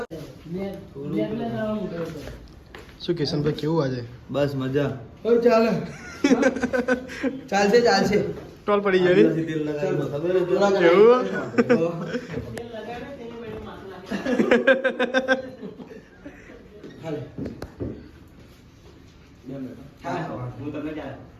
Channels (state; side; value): identical; both; correlation 1.00